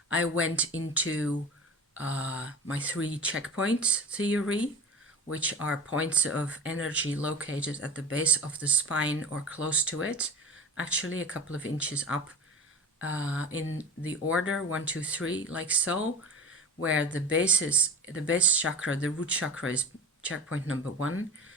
I went into my 3 checkpoints theory, which are points of energy located at the base of the spine or close to it, actually a couple of inches up in the order 1, 2, 3, like so, where the base chakra, the root chakra, is checkpoint number 1.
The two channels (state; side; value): normal; both; correlation 0.34